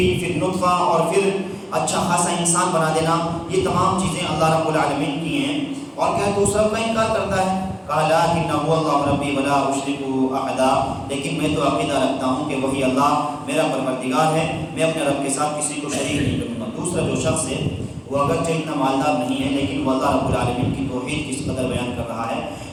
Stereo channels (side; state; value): both; identical; correlation 1.00